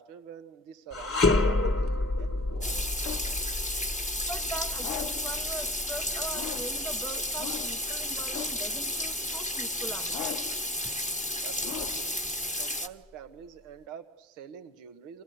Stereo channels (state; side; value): normal; both; correlation 0.41